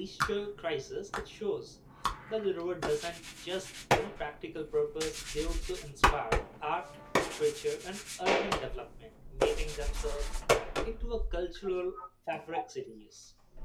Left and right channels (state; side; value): identical; both; correlation 1.00